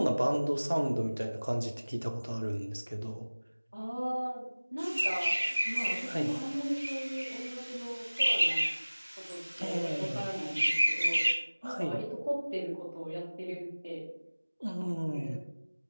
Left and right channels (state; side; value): inverted; both; correlation -1.00